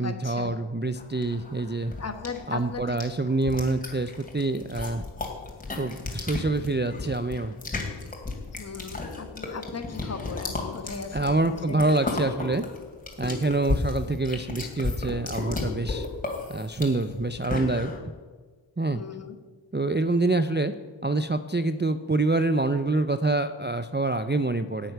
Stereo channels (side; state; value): both; normal; correlation 0.50